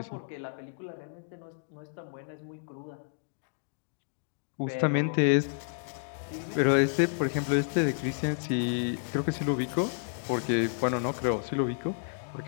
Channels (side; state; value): right; silent; digital silence